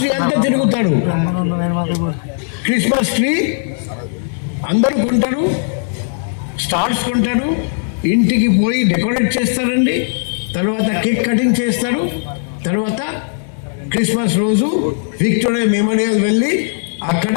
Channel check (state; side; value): silent; right; digital silence